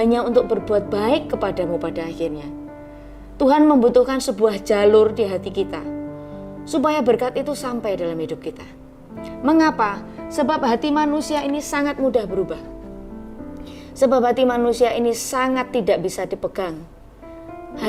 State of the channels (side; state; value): both; identical; correlation 1.00